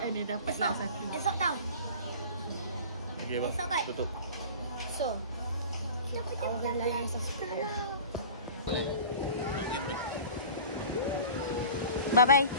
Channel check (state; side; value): inverted; both; correlation -0.40